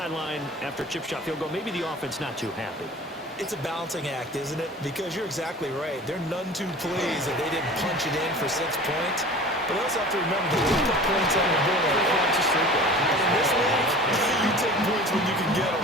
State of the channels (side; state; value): both; normal; correlation 0.40